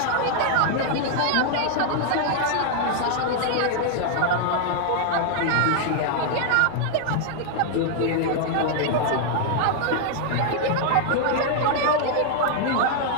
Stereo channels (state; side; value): different; both; correlation 0.00